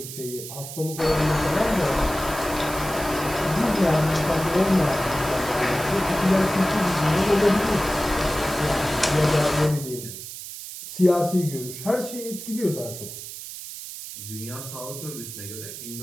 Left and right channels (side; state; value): right; noise; hiss, 10 dB below the sound